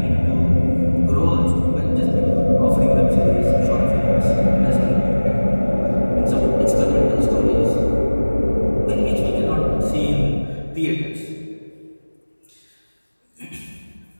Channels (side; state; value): both; inverted; correlation -1.00